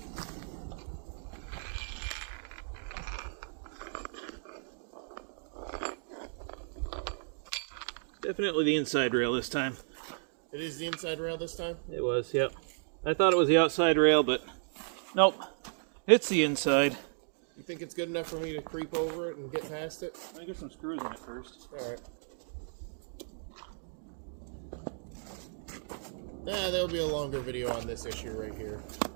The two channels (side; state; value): left; silent; digital silence